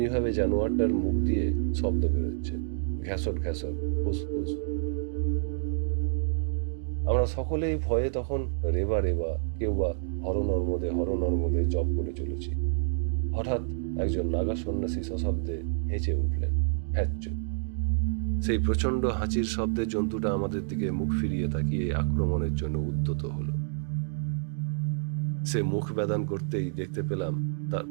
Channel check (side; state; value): left; silent; digital silence